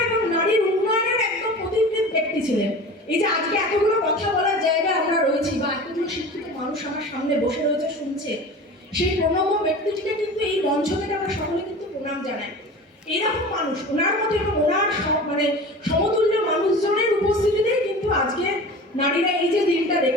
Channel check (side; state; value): both; normal; correlation 0.36